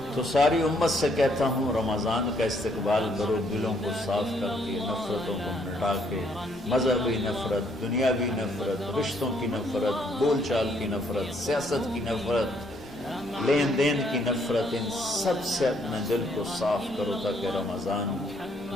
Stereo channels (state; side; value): normal; both; correlation 0.69